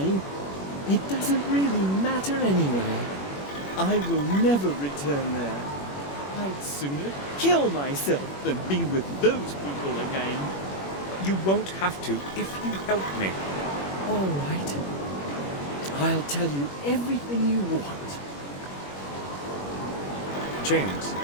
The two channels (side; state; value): right; late; 21 ms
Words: it doesn't really matter anyway. I will never return there. I'd sooner kill myself than be with those people again. You won't have to if you help me. All right. I'll tell you everything you want. James,